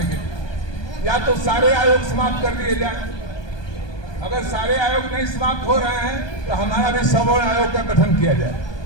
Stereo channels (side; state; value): right; late; 1.2 ms